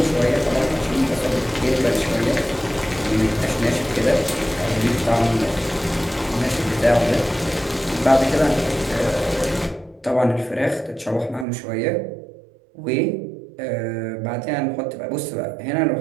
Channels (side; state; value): left; drops out; at 11.5 s